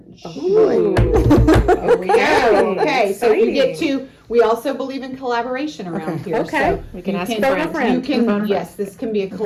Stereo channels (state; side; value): identical; both; correlation 1.00